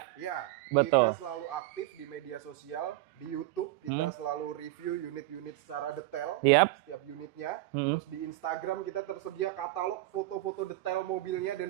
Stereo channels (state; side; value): quieter; left; 17.2 dB